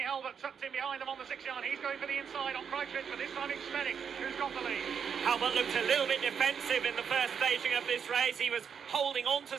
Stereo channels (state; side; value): quieter; left; 7.0 dB